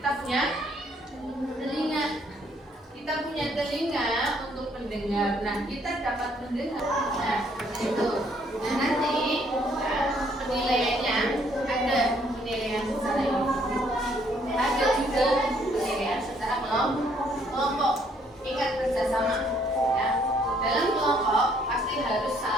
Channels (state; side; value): normal; both; correlation 0.66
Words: punya telinga. Kita punya telinga untuk mendengar. Nah, kita dapat mendengar. Nah, itu. Nah, nanti penilaiannya ada penilaian secara individu, ada juga penilaian secara kelompok. Ingat kerjasama. Ya. Dalam kelompok pasti harus